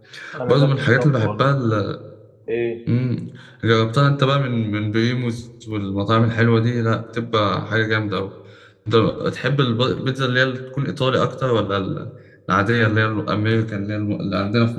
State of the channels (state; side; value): identical; both; correlation 1.00